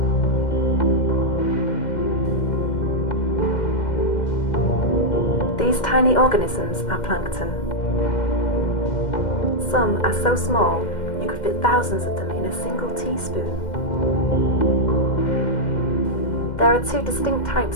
These tiny organisms are plankton. Some are so small you could fit thousands of them in a single teaspoon. There are two distinct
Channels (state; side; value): late; right; 2.1 ms